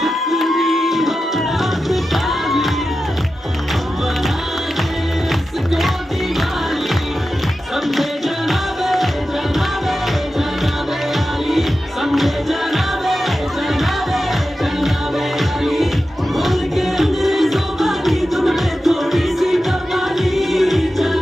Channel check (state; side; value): normal; both; correlation 0.92